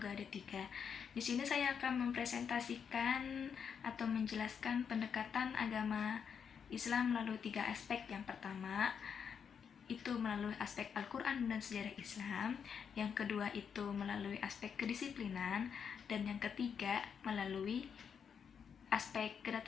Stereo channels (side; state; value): right; quieter; 7.1 dB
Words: D3. Di sini saya akan mempresentasikan atau menjelaskan pendekatan agama Islam melalui 3 aspek. Yang pertama itu melalui aspek Al-Quran dan sejarah Islam. Yang kedua itu melalui aspek kedisiplinan. Dan yang ketiga melalui aspek